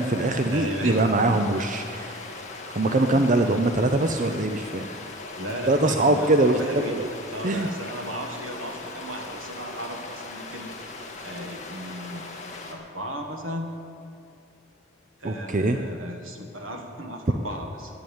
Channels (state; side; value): normal; both; correlation 0.39